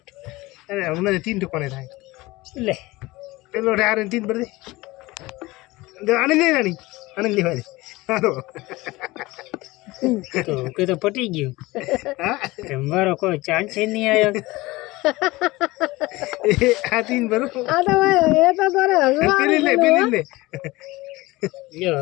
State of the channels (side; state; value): right; quieter; 20.6 dB